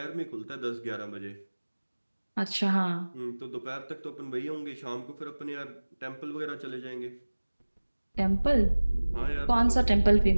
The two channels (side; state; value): both; inverted; correlation -1.00